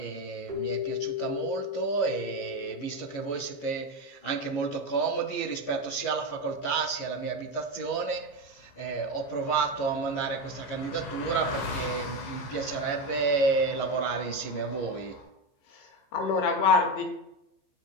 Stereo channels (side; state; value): right; late; 15 ms